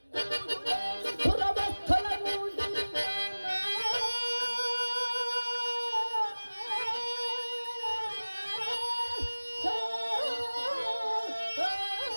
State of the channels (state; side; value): inverted; both; correlation -1.00